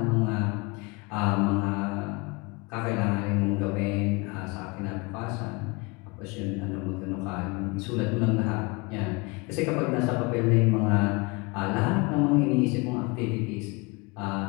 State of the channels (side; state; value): right; quieter; 27.4 dB